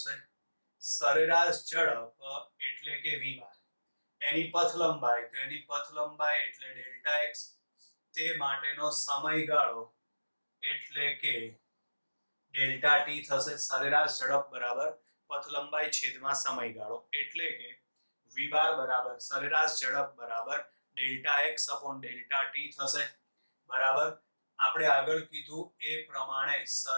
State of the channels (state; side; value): inverted; both; correlation -1.00